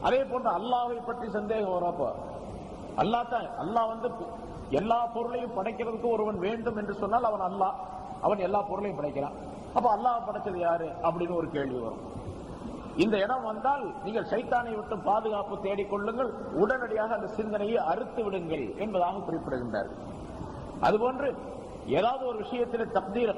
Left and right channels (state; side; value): identical; both; correlation 1.00